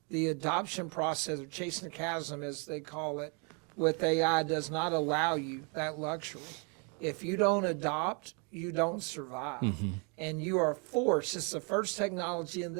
The adoption process, or chasing the chasm as they call it, with AI does not allow you that luxury. If you don't adopt, you don't survive. Mm-hmm. And you are forced. It's the first technology in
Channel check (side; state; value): left; quieter; 35.3 dB